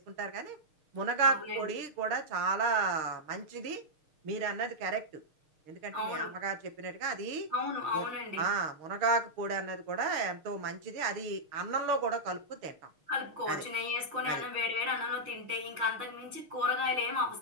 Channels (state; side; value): late; left; 6.5 ms